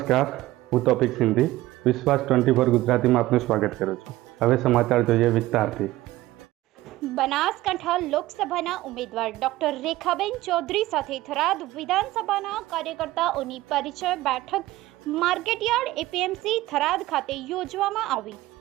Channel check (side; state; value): left; quieter; 17.1 dB